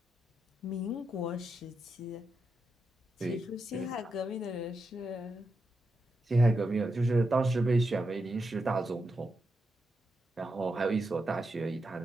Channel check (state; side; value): normal; both; correlation 0.86